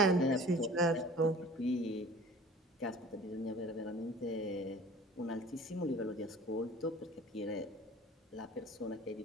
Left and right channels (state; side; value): normal; both; correlation 0.45